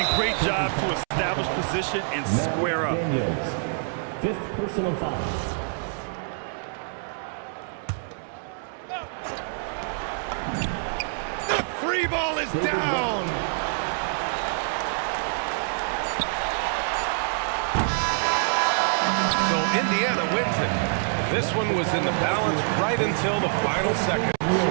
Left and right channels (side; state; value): left; silent; 61 dB below the other